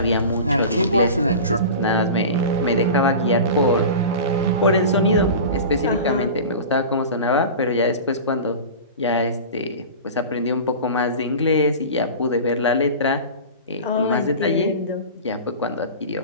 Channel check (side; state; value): both; inverted; correlation -0.33